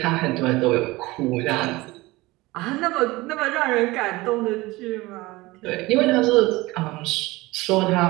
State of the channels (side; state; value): left; quieter; 20.7 dB